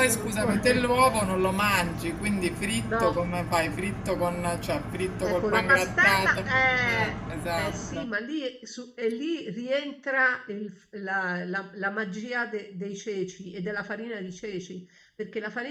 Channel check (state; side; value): identical; both; correlation 1.00